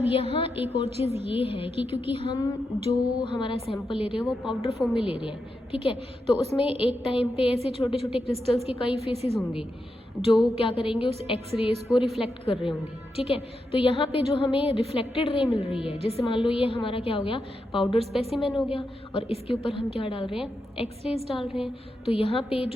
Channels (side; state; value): both; normal; correlation 0.86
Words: यहाँ एक और चीज़ ये है कि क्योंकि हम जो हमारा सैंपल ले रहे हैं वो पाउडर फॉर्म में ले रहे हैं, ठीक है, तो उसमें एक टाइम पे ऐसे छोटे छोटे क्रिस्टल्स के कई फेसेस होंगे जो क्या करेंगे, उस एक्सरेज को रिफ्लेक्ट कर रहे होंगे। ठीक है, तो यहाँ पे जो हमें रिफ्लेक्टेड रे मिल रही है, जैसे मान लो ये हमारा क्या हो गया, पाउडर स्पेसिमेन हो गया, और इसके ऊपर हम क्या डाल रहे हैं, एक्सरेज डाल रहे हैं, तो यहाँ पे